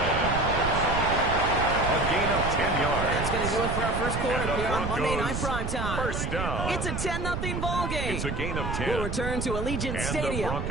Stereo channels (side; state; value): right; noise; rumble, 3 dB below the sound